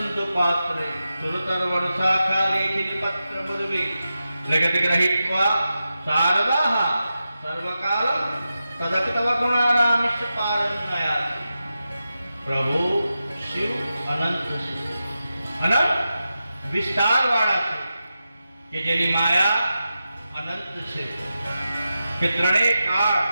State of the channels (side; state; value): both; inverted; correlation -0.91